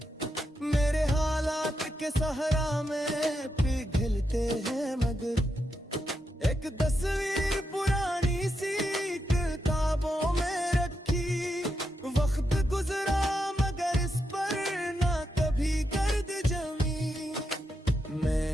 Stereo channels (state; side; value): normal; both; correlation 0.84